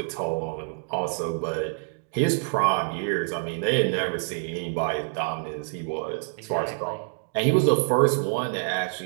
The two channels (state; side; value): silent; left; digital silence